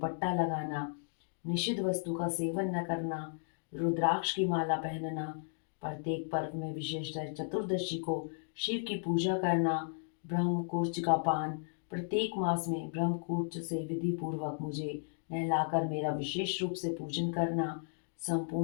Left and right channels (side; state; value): right; silent; digital silence